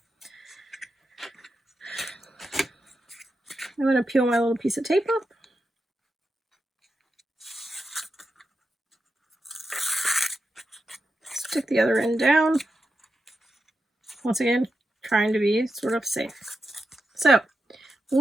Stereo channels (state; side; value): normal; both; correlation 0.88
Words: I'm going to peel my little piece of tape up. Stick the other end down. Once again, trying to be sort of safe. So,